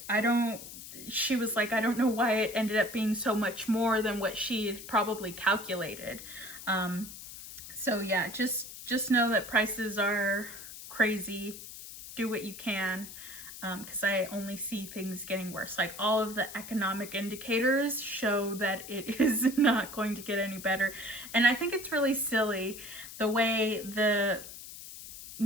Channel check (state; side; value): noise; left; hiss, 13 dB below the sound